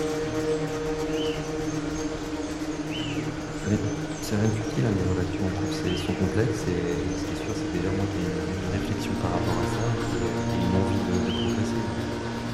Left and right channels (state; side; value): identical; both; correlation 1.00